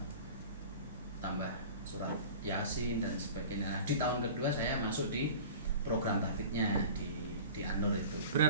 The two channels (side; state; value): both; inverted; correlation -0.39